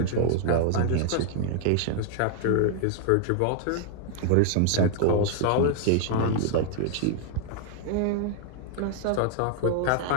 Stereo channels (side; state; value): both; different; correlation 0.00